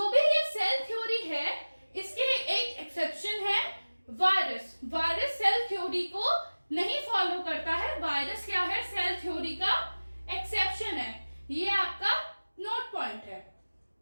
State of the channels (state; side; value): inverted; both; correlation -1.00